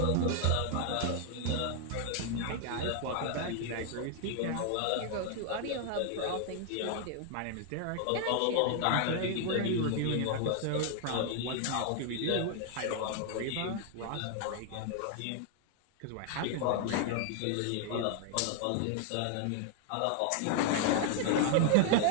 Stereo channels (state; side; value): different; both; correlation 0.00